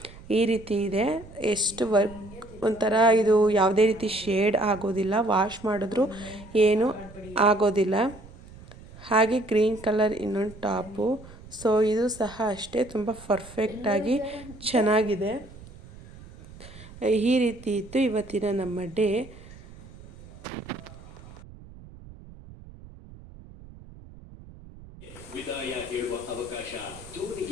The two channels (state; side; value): noise; right; rumble, 19 dB below the sound